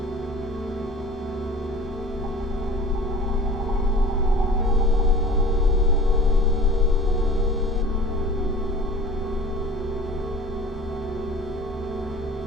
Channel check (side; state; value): both; normal; correlation 0.42